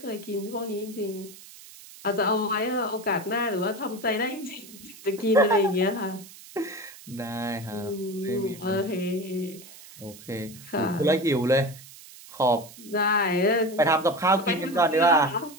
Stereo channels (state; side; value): noise; right; hiss, 18 dB below the sound